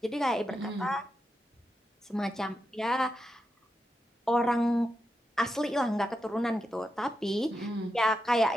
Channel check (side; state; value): both; normal; correlation 0.87